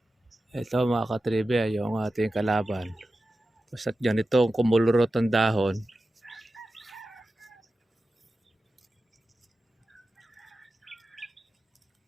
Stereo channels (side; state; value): both; normal; correlation 0.93